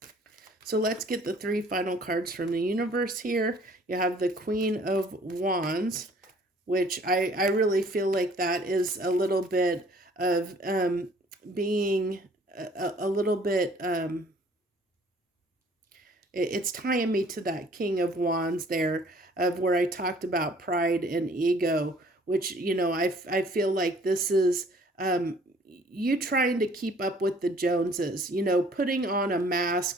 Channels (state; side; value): normal; both; correlation 0.56